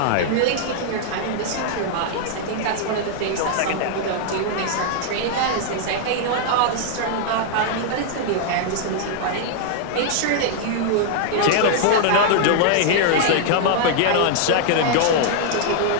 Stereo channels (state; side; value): different; both; correlation -0.01